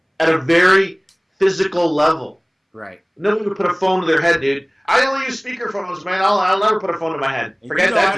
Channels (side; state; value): both; identical; correlation 1.00